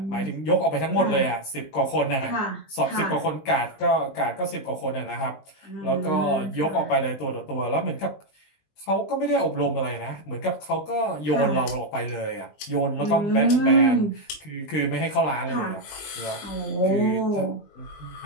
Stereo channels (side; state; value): right; late; 20 ms